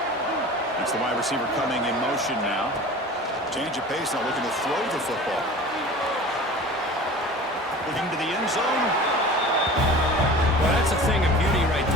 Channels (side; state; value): both; normal; correlation 0.39